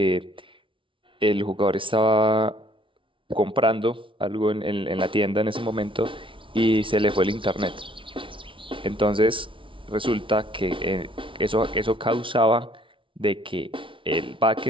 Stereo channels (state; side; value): late; left; 0.25 ms